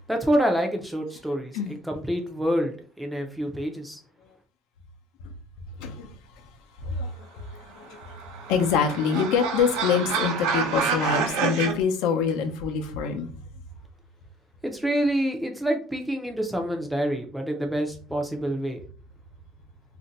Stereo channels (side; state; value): both; normal; correlation 0.52